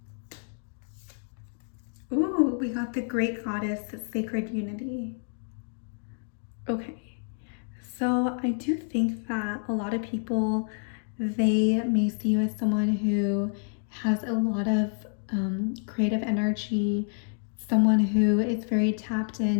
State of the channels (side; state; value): right; silent; digital silence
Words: Ooh, we got the Great Goddess, Sacred Unity. Okay. So I do think that a lot of people, they may see you as someone who has a lot of creative energy, someone who is very tapped